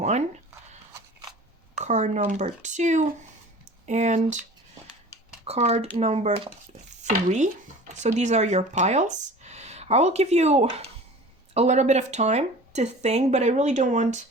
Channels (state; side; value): normal; both; correlation 0.41